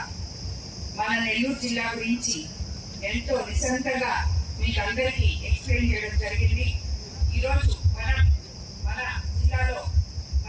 మన నెల్లూరు జిల్లా గురించి ఎంతో నిశంతగా మీకు అందరికీ ఎక్స్ప్లెయిన్ చేయడం జరిగింది. ఈరోజు మన జిల్లాలో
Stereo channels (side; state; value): both; identical; correlation 1.00